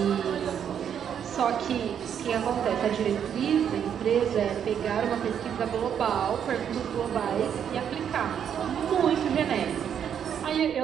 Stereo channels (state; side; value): quieter; left; 8.5 dB